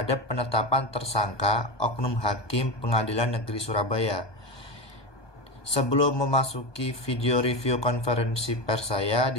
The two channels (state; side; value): late; right; 1.2 ms